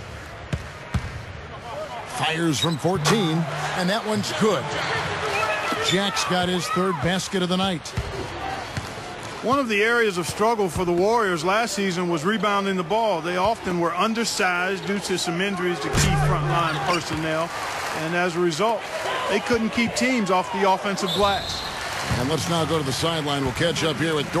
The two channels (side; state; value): both; identical; correlation 1.00